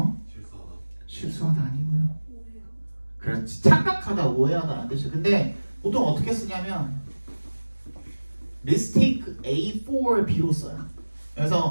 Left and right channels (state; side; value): inverted; both; correlation -1.00